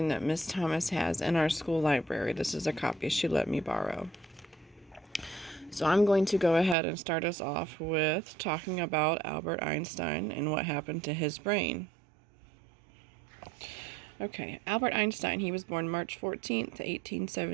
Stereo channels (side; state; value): left; drops out; at 6.8 s